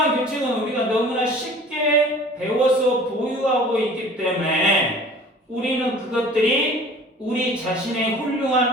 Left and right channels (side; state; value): both; normal; correlation 0.46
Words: 규칙은 우리가 너무나 쉽게 배워서 보유하고 있기 때문에 우리는 그것들이 우리 자신의